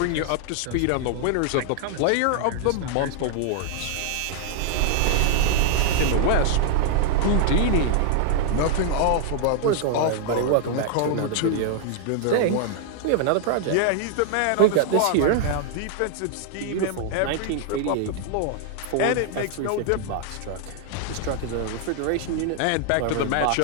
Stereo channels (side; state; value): both; different; correlation 0.00